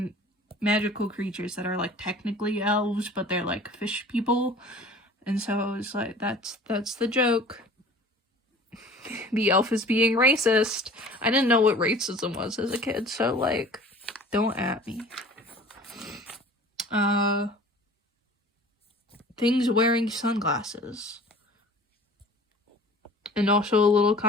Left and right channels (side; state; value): both; normal; correlation 0.45